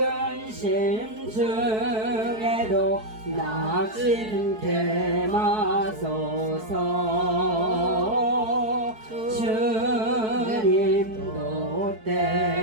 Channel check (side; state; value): left; late; 4.6 ms